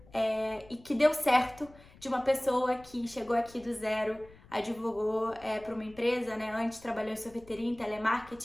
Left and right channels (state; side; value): noise; left; rumble, 24 dB below the sound